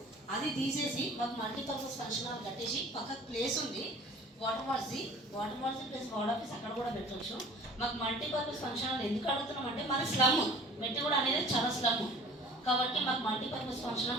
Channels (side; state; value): both; normal; correlation 0.47